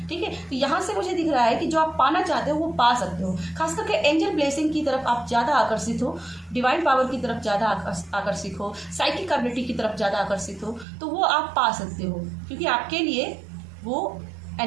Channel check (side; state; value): left; drops out; at 10.9 s